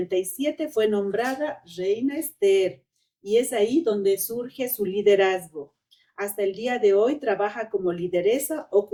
fue nombrada Reina Esther y es ahí donde surge su liderazgo. Hasta el día de hoy trabaja como lideresa,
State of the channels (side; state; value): both; identical; correlation 1.00